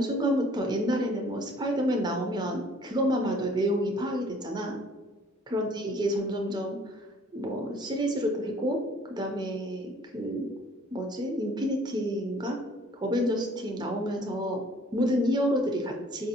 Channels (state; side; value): normal; both; correlation 0.56